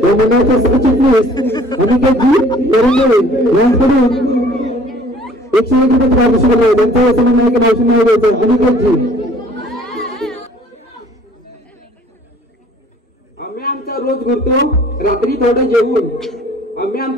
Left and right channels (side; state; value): both; normal; correlation 0.54